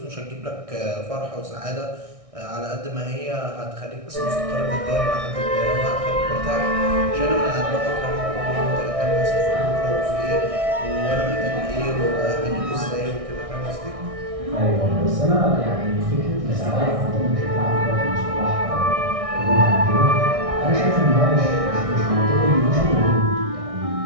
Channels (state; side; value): late; left; 1.6 ms